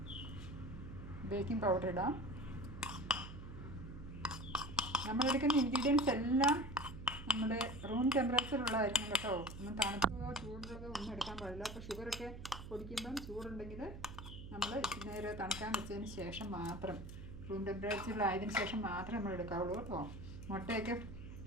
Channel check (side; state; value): right; noise; hum, 11 dB below the sound